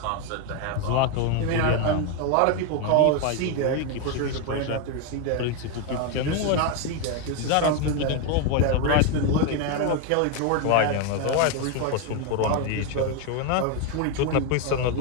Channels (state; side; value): different; both; correlation 0.01